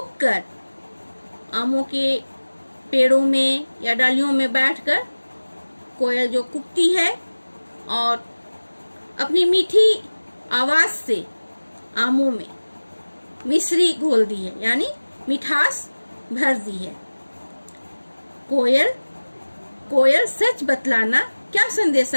कर आमों के पेड़ों में या डालियों में बैठकर कोयल जो कुकती है और अपनी मीठी आवाज से आमों में मिश्री घोल दी है, यानी मिठास भर दी है। कोयल कोयल सच बतलाना क्या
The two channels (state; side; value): inverted; both; correlation -1.00